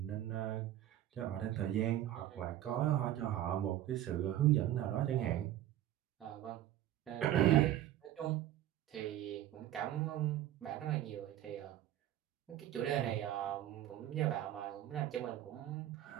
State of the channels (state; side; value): quieter; left; 12.8 dB